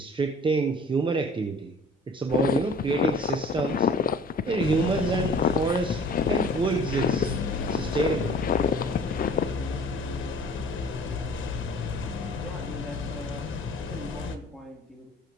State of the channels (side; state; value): both; normal; correlation 0.49